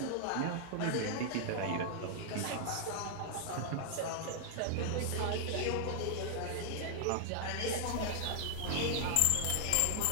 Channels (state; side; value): different; both; correlation 0.00